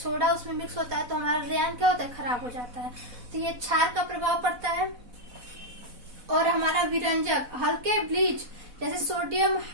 उसमें मिक्स होता है तो हमारा रेयान क्या होता है, खराब हो जाता है। तो ये क्षार का प्रभाव पड़ता है। और हमारा विरंजक हल्के ब्लीच जैसे सोडियम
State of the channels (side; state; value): left; late; 4.0 ms